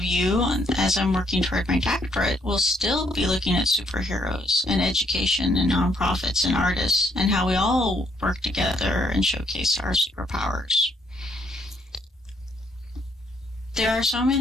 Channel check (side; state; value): both; normal; correlation 0.70